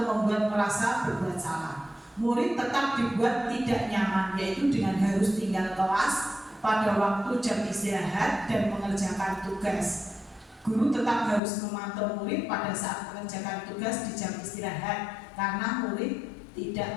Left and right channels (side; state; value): right; drops out; at 11.4 s